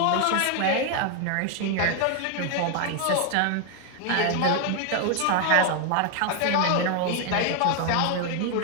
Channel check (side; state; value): both; different; correlation 0.01